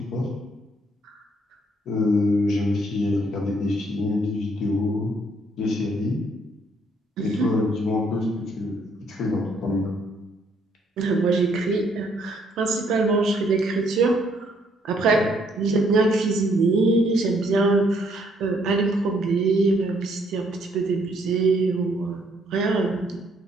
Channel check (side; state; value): both; normal; correlation 0.68